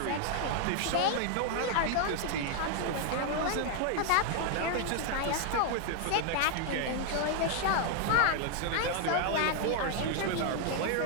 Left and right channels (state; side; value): different; both; correlation 0.00